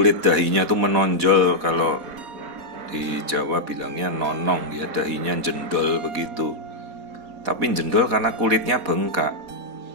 dahinya tuh menonjol. Kalau di Jawa bilangnya nonong, ya, dahinya jendol begitu. Tapi jendol karena kulitnya bengkak.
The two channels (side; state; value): left; late; 4.1 ms